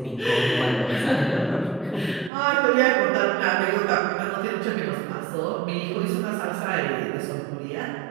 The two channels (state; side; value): drops out; left; at 2.3 s